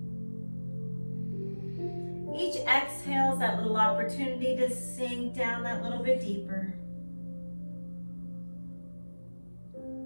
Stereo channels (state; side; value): inverted; both; correlation -1.00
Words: Each exhale is that little opportunity to sink down that little bit deeper.